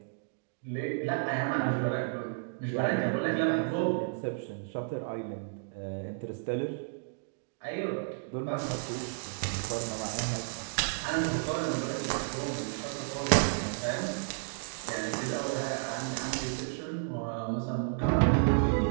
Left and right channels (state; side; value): silent; left; digital silence